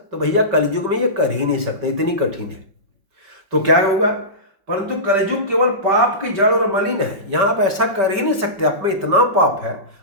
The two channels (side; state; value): left; late; 5.2 ms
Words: भैया कलयुग में ये कर ही नहीं सकते, इतनी कठिन है। तो क्या होगा? परंतु कलयुग केवल पाप की जड़ और मलिन है। यहाँ आप ऐसा कर ही नहीं सकते, आप में इतना पाप है,